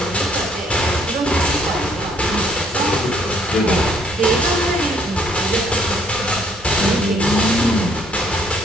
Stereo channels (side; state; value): both; normal; correlation 0.65